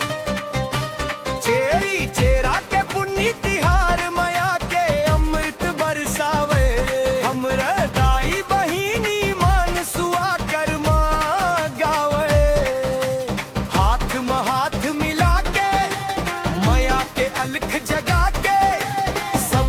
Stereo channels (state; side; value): identical; both; correlation 1.00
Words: चेरी चेरा के पुण्य तिहार माया के अमृत बरसावे, हमरा दाई बहिनी मान सुआ कर्मा गावे। हाथ में हाथ मिला के माया के अलख जगा के